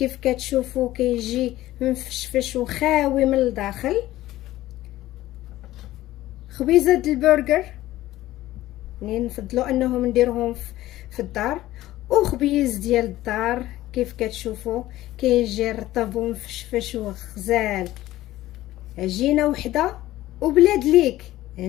كتشوفوا كيجي مفشفش وخاوي من الداخل. خبيزه البرجر يعني نفضلوا انهم نديروهم في الدار، وخبيز ديال الدار كيف كتشوفوا كيجي رطب ومفشفش وغزال. عجينه وحده وبلاد ليك،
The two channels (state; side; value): quieter; right; 15.6 dB